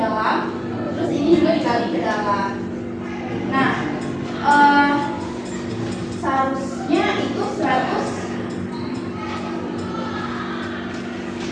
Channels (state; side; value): identical; both; correlation 1.00